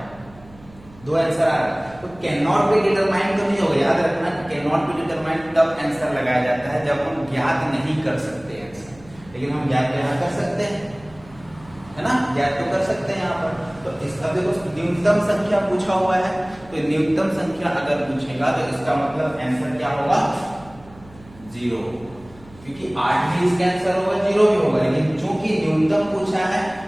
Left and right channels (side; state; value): right; noise; hum, 23 dB below the sound